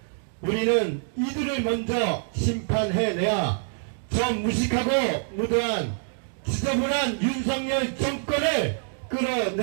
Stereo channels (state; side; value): silent; left; digital silence